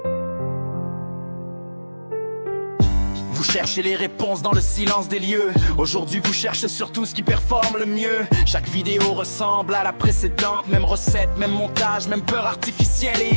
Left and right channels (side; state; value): both; inverted; correlation -1.00